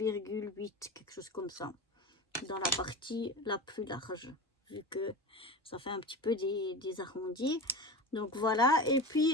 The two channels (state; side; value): normal; both; correlation 0.28